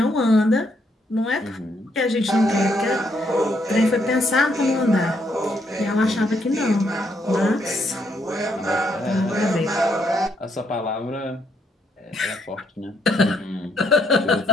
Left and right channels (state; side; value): normal; both; correlation 0.74